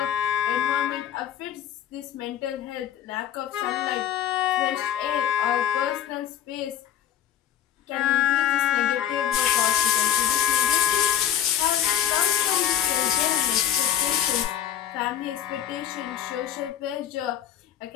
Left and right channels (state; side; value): quieter; right; 10.4 dB